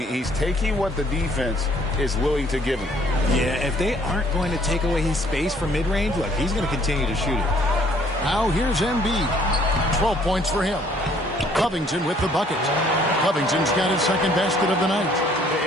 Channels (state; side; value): normal; both; correlation 0.61